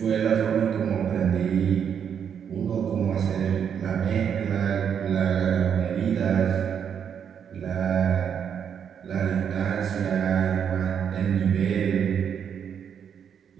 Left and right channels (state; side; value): quieter; left; 7.9 dB